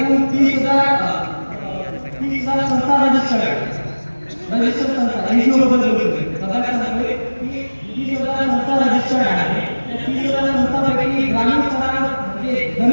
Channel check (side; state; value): both; inverted; correlation -1.00